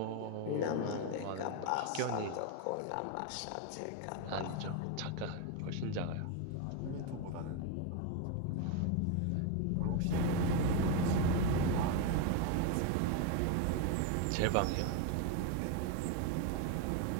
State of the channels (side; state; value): both; different; correlation 0.02